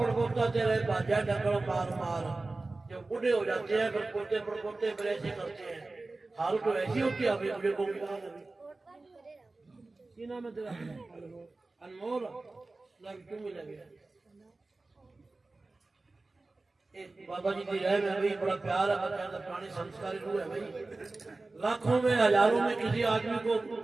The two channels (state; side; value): quieter; left; 3.3 dB